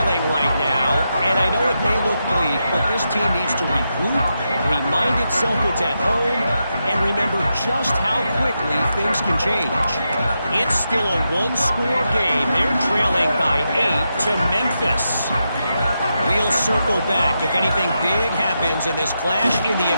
right now, and I know it may look bleak, but this team needs to regroup, remind itself it's at home, and remember just how quickly things can change. It's still a one-score game. They're trailing by 8 to Memphis. We'll circle back. If anything big happens in this clash in the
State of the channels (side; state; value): both; inverted; correlation -0.86